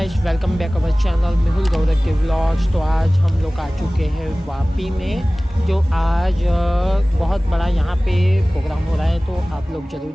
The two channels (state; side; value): normal; both; correlation 0.98